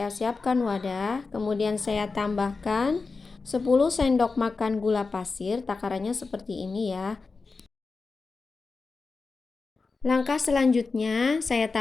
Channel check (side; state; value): right; quieter; 4.2 dB